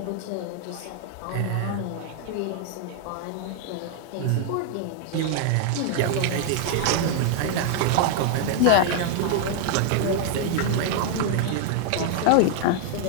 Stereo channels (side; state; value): both; different; correlation 0.00